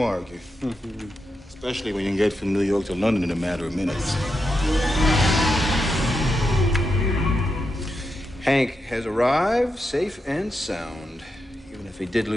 argue? Especially when you can get from New York to London in a matter of minutes. Hank has arrived safe and sound, even if he did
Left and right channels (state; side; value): normal; both; correlation 0.86